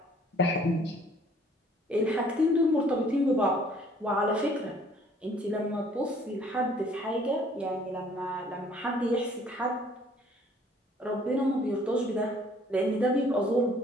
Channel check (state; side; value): normal; both; correlation 0.58